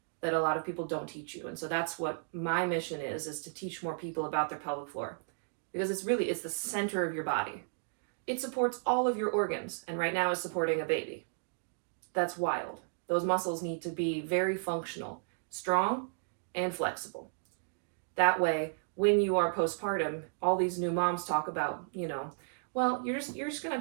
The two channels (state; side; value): silent; left; digital silence